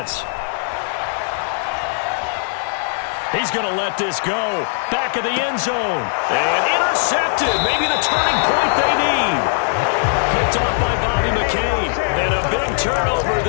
He's going to let this go. Back of the end zone. And intercepted. Maybe the turning point they need. Picked off by Bobby McCain. And a big turnover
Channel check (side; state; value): right; silent; digital silence